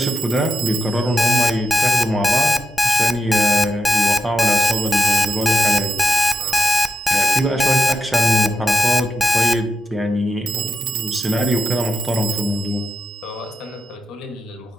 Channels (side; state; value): both; normal; correlation 0.87